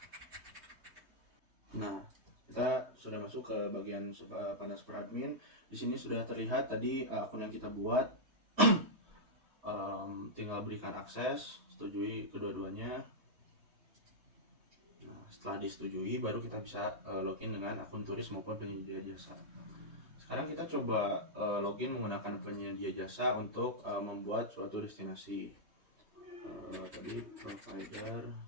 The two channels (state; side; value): late; left; 3.2 ms